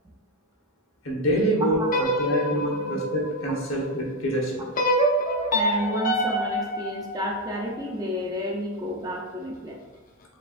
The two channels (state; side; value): normal; both; correlation 0.07